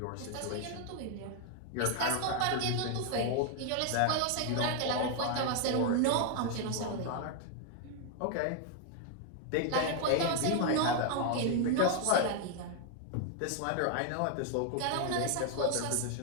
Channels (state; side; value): different; both; correlation 0.00